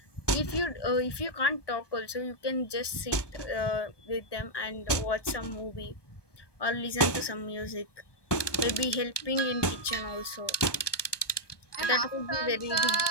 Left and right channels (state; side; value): late; right; 1.2 ms